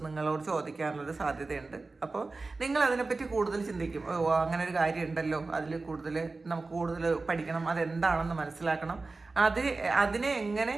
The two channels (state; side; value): quieter; left; 3.6 dB